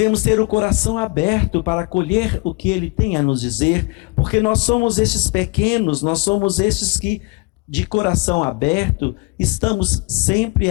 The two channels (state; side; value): quieter; right; 27.9 dB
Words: ter o coração aberto para acolher o que Ele tem a nos dizer, porque nós somos esses pequenos, nós somos esses que, de coração aberto, estamos